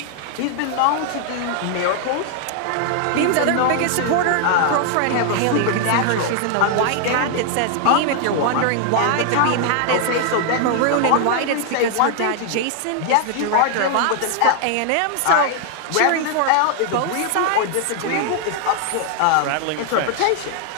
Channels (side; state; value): both; different; correlation 0.00